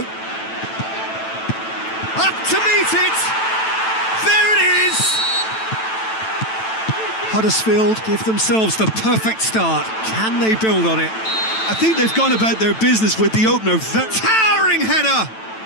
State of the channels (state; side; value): late; right; 9.1 ms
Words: Up to meet it! There it is! Huddersfield give themselves the perfect start. Can they build on it? I think they've gone about their business with the opener. Towering header!